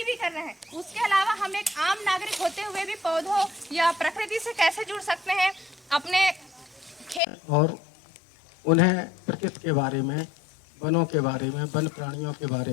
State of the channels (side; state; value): right; drops out; at 7.2 s